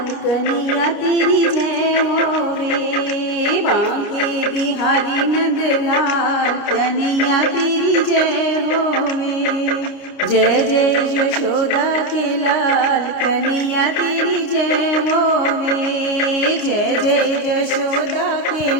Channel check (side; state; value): right; late; 29 ms